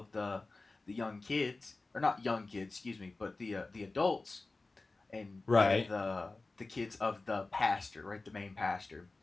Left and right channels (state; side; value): quieter; right; 3.4 dB